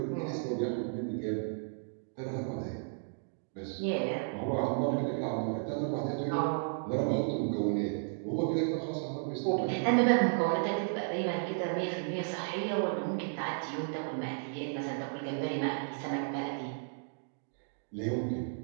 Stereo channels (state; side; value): silent; left; digital silence